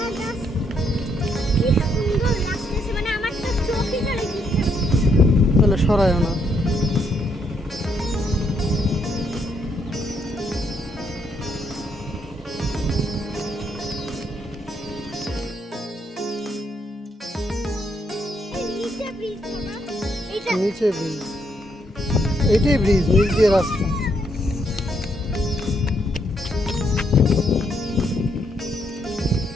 তাহলে সরায়ও না। নিচে ব্রিজ, এইটাই ব্রিজ, নিচ দিয়ে রাস্তা।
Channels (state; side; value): normal; both; correlation 0.74